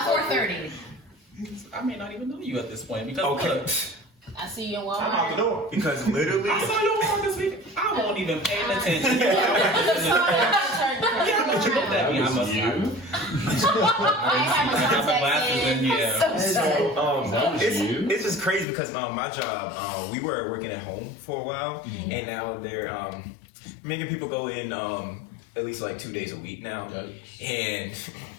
4:30. I may not even know you at this point because I see you in Walmart. I'm out the door. Because literally, I saw you on this week. I won't even pay attention. Yeah, but you looked at me. I must I got my glasses in. Yeah. it's just crazy because my job, we were working at home for a while, and now they're making people go in at least like 2 days a week now, and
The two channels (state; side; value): drops out; right; at 18.7 s